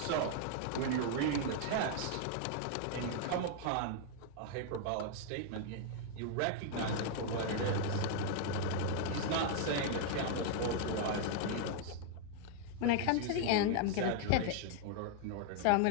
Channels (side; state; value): both; different; correlation 0.00